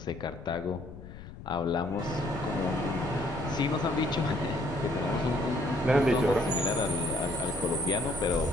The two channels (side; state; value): left; noise; rumble, 14 dB below the sound